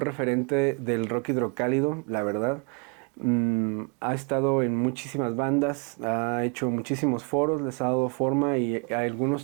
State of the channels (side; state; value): left; quieter; 34.6 dB